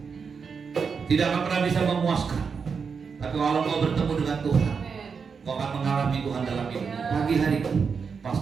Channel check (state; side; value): quieter; left; 5.7 dB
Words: tidak akan pernah bisa memuaskan. Tapi kalau kau bertemu dengan Tuhan, kau akan mengalami Tuhan dalam hidupmu. Pagi hari ini,